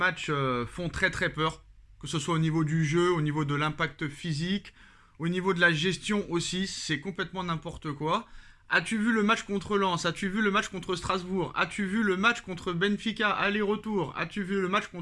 font très très peur. Que ce soit au niveau du jeu, au niveau de l'impact physique, au niveau de la gestion aussi, c'est complètement n'importe quoi. As-tu vu le match contre Lens? As-tu vu le match contre Strasbourg? As-tu vu le match contre Benfica, aller-retour? As-tu vu le match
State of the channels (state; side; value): identical; both; correlation 1.00